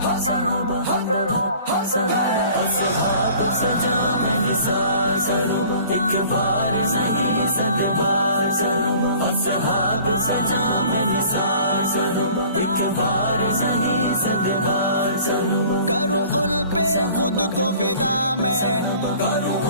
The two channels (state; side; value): inverted; both; correlation -0.49